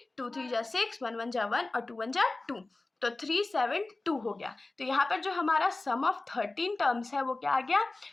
2 3 जा 6, 1 1 जा 1 और 2 1 जा 2, तो 372 हो गया। तो यहाँ पर जो हमारा सम ऑफ 13 टर्म्स है वो क्या आ गया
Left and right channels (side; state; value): right; quieter; 3.2 dB